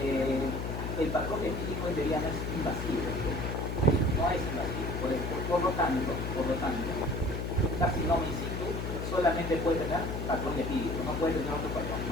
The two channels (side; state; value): left; noise; hum, 3 dB below the sound